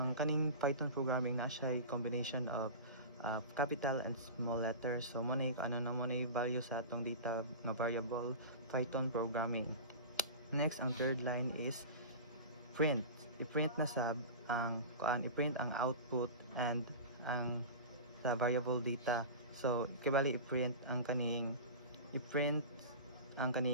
kaning Python programming naa siya combination of capital and small letters. So mo na value sa atong data nga variable Python programming. Next, ang third line is print. I-print na sab ang i-print ang output and ang sa variable data. So kibali i-print ang kaning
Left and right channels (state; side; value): inverted; both; correlation -0.31